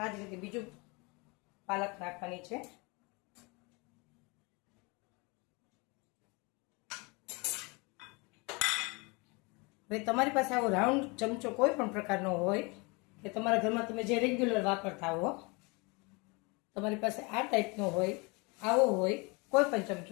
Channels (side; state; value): right; quieter; 28.3 dB